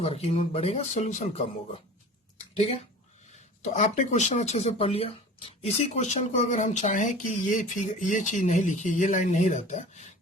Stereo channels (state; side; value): normal; both; correlation 0.40